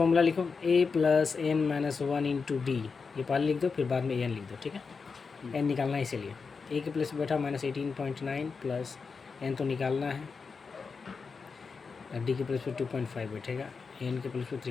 लिखो A plus N minus one into D, ये पहले लिख दो फिर बाद में ए एन लिख दो, ठीक है। एन निकालना है इसीलिए, ए के प्लस बैठा -18.9 प्लस एन तो निकालना है, डी के प्लस पे 2.5 बैठेगा, एन के प्लस पे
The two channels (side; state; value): right; quieter; 5.0 dB